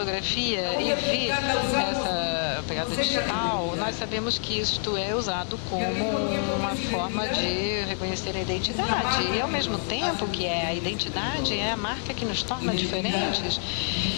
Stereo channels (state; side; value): silent; right; 60 dB below the other